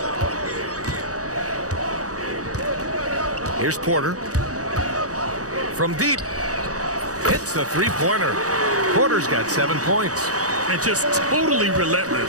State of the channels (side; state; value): left; late; 0.66 ms